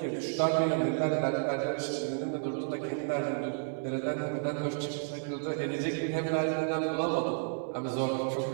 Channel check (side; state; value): left; silent; 57 dB below the other